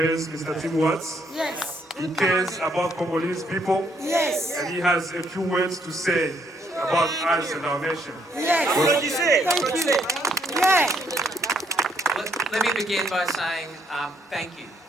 Mr. Tim Watts. Yes. He cares about Congolese people. Yes. And he has a few words to say about us and our nation. Yes. Thank you. Yeah. Let me begin by saying thank you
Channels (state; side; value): normal; both; correlation 0.71